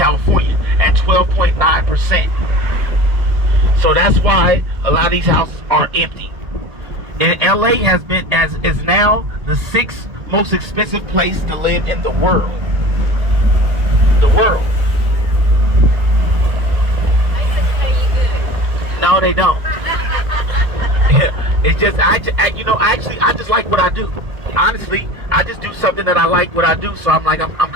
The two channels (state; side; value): late; left; 1.8 ms